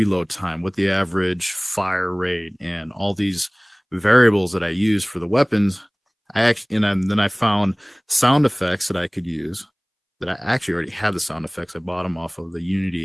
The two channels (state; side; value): identical; both; correlation 1.00